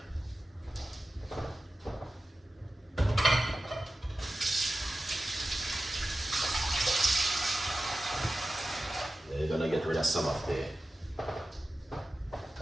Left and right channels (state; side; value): normal; both; correlation 0.95